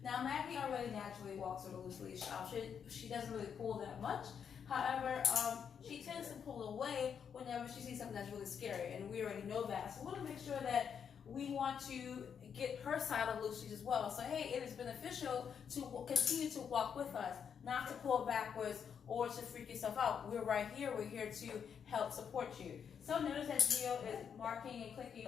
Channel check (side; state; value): right; quieter; 7.4 dB